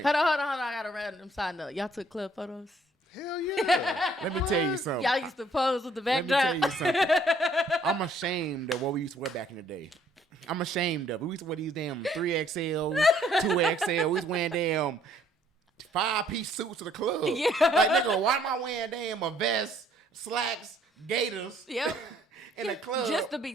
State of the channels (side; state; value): both; normal; correlation 0.63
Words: Hold on. I got a random side note. Y'all took club photos? Hell yeah. Let me tell you something. Y'all used to pose with the Let me backdrop. tell you something. I'm ashamed of what we used to wear back in the day. I'm ashamed of it. We used to wear these damn 3XL, 2XL. We was wearing damn 5-piece suits to the club. Yeah. Like, nigga, why am I wearing damn a vest, slacks, gaiters Yep. in the club? Just to be